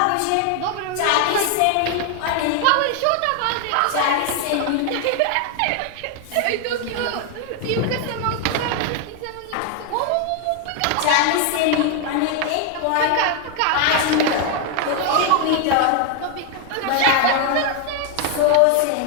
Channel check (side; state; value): both; different; correlation 0.01